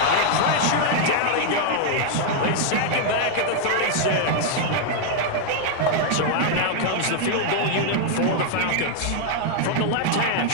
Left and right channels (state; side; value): different; both; correlation 0.00